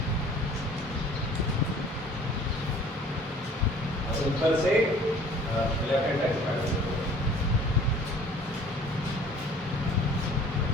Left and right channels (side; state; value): both; normal; correlation 0.51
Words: ऊपर से लेफ्ट हैंड साइड से काट लीजिए।